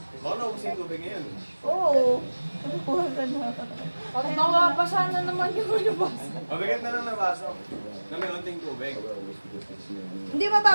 Baka naubos yung tubig ngayon. Oo. Nakuha ka na. Pag nakabasa na naman yung lumabas. Mabigat na lang na baso. Na may konting tubig. Hindi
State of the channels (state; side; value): inverted; both; correlation -1.00